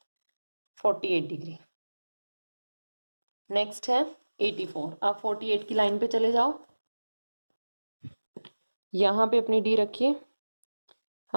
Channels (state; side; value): inverted; both; correlation -1.00